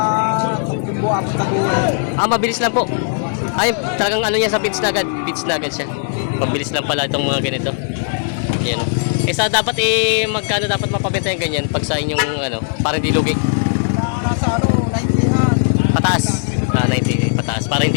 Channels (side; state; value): right; silent; digital silence